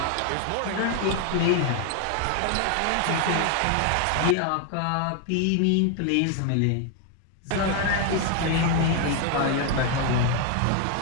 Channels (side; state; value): both; different; correlation 0.00